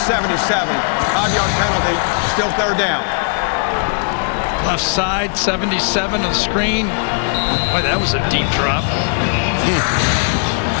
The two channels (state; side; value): silent; right; 68 dB below the other